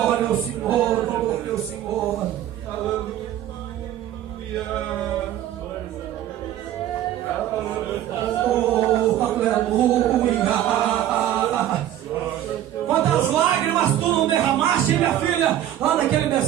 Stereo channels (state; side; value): quieter; left; 12.0 dB